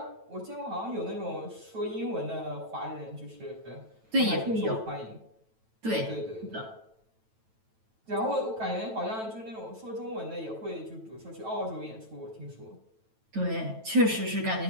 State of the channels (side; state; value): left; late; 9.1 ms